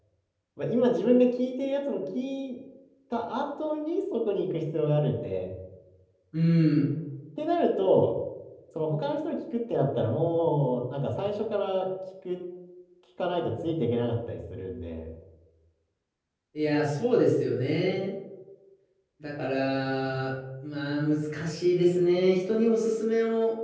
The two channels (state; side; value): identical; both; correlation 1.00